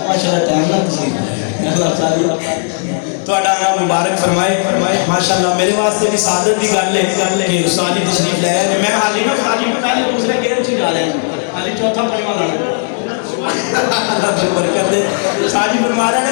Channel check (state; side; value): silent; right; digital silence